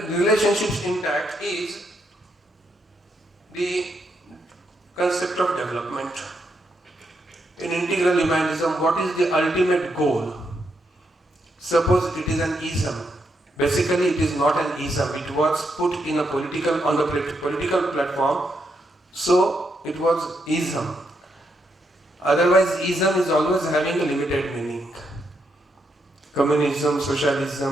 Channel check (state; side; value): normal; both; correlation 0.79